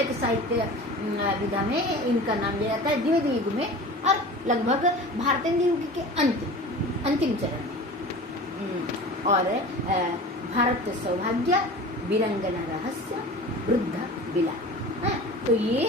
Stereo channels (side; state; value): both; normal; correlation 0.37